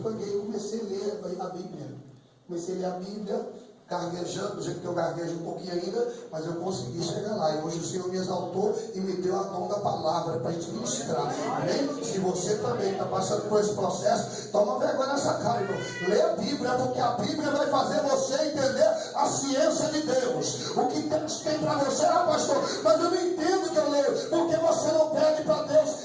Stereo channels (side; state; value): both; identical; correlation 1.00